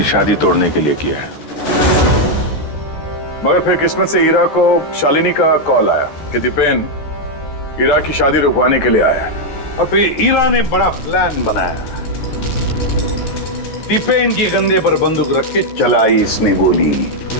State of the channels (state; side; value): late; right; 14 ms